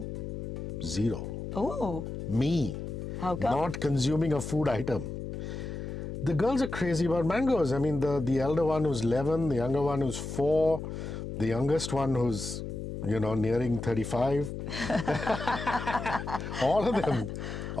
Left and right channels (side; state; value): left; noise; hum, 6 dB below the sound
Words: 0. Oh. Me. How come? Not consuming a food item. The girls are crazy about mangoes. I mean, the elder one who's 11, the younger one who's 4, the youngest one who's, nearing 35. All of them